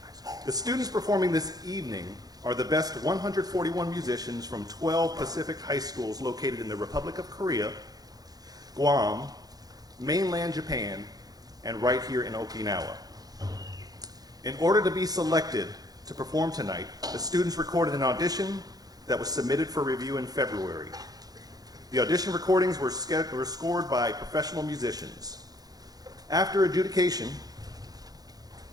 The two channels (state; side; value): late; left; 0.19 ms